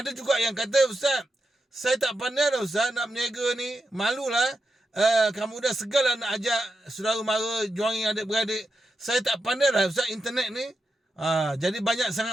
ada juga yang kata, Ustaz, saya tak pandai dah Ustaz nak berniaga ni, malulah. Kamu dah segal lah nak ajak saudara mara, join adik-beradik. Saya tak pandai lah Ustaz internet ni. Jadi banyak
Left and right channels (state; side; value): normal; both; correlation 0.87